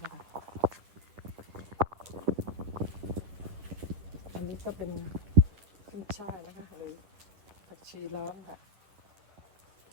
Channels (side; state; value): left; late; 10 ms